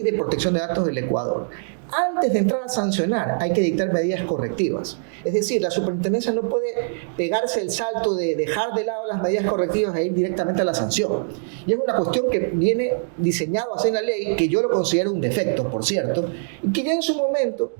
de protección de datos del Ecuador, antes de entrar a sancionar hay que dictar medidas correctivas. Es decir, la superintendencia no puede pegarse el salto de dejar de lado las medidas correctivas e ir directamente a la sanción. Y es una cuestión que viene diseñado así en la ley, que yo lo considero un defecto, por cierto, y que ya en su momento,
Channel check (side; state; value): left; silent; digital silence